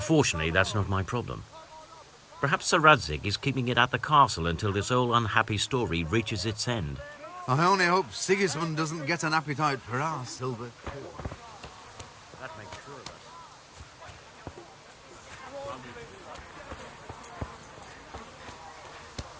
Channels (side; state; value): both; identical; correlation 1.00